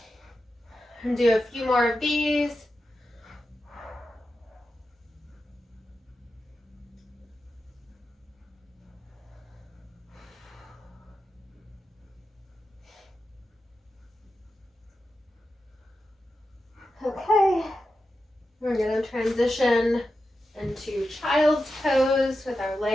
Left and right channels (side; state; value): both; normal; correlation 0.90